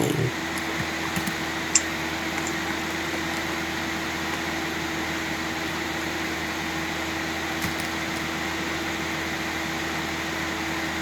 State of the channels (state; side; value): identical; both; correlation 1.00